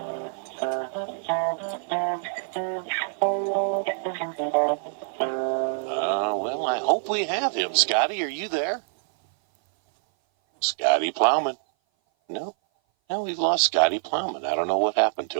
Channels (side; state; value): left; silent; 57 dB below the other